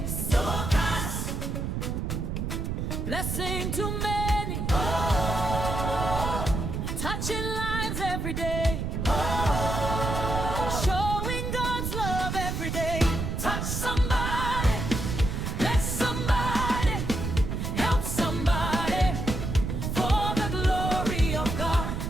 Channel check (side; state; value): right; noise; rumble, 2 dB below the sound